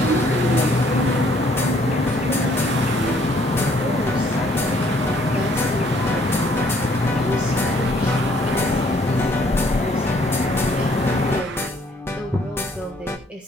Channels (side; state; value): both; normal; correlation 0.63